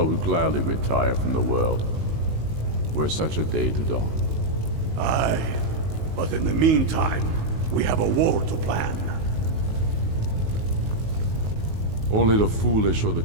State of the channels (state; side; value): late; left; 19 ms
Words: would gladly retire from the world, were such a day to dawn. Aye, but in the meantime, we have a war to plan. Only the foolish or the